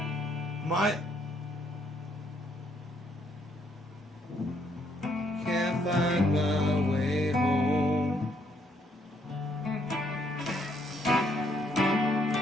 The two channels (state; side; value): normal; both; correlation 0.71